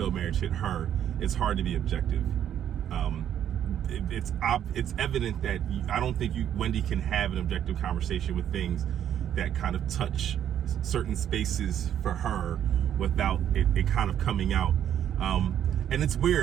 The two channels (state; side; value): quieter; left; 10.1 dB